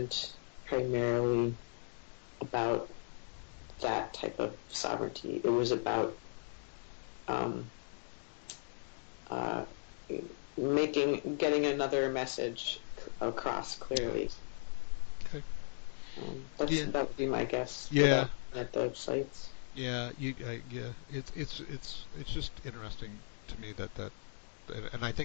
primarily about that type of sovereignty. It was about um, uh, getting another message across clearly. Okay. Yeah. That would be my guess Yeah. without at the sites. Yeah. Yeah. It's just interesting to me that and I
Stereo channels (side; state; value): right; silent; digital silence